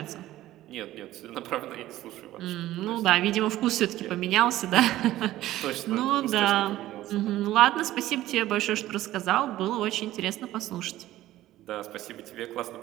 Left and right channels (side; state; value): left; quieter; 14.9 dB